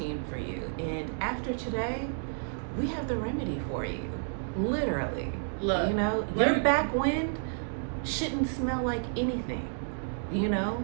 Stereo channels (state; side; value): silent; left; digital silence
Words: for you. And after today, we have the remedy for you. Literally. Look, your back wind shouldn't smell like anything,